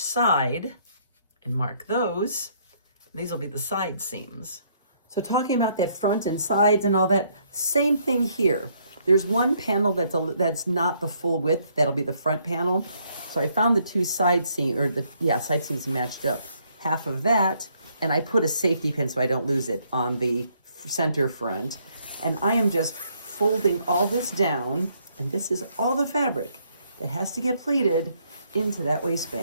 side and mark those. And these will be the side seams. So talking about that front and sides and all that, same thing here. There's one panel that's not the full width. That'll be the front panel. So I found the two side seams, side seams matched up. Half of that, and I put a safety pin so I don't lose it on the center front. And I am just folding all this down, and this is all the fabric that has to get pleated into that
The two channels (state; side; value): inverted; both; correlation -0.69